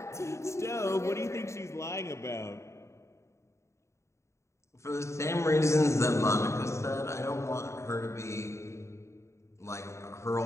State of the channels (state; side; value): late; right; 0.14 ms